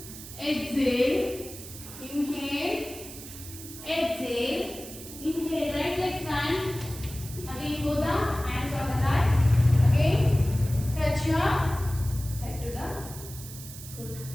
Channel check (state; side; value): noise; right; hiss, 13 dB below the sound